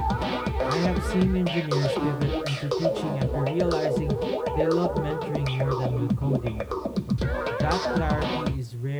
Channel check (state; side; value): identical; both; correlation 1.00